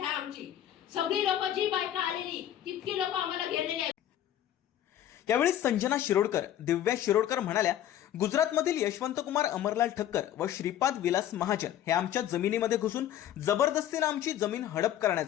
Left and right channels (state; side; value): quieter; right; 11.5 dB